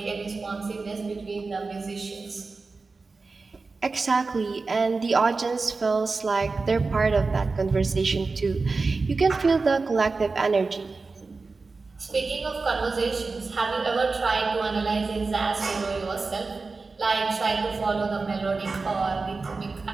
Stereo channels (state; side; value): quieter; left; 4.0 dB